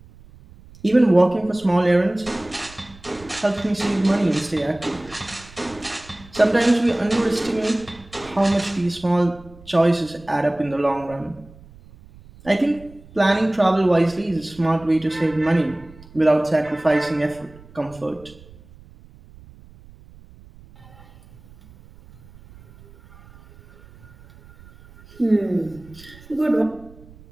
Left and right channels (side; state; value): right; noise; rumble, 23 dB below the sound